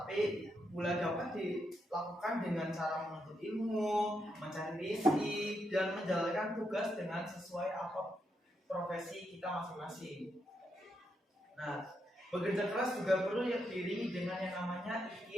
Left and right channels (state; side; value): normal; both; correlation 0.82